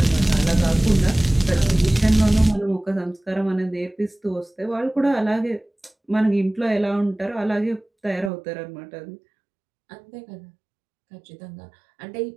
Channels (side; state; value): left; drops out; at 8.3 s